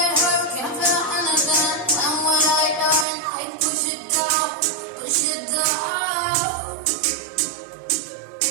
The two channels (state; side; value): drops out; left; at 3.1 s